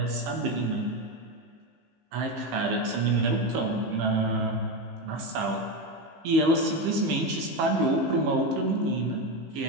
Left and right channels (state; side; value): late; left; 15 ms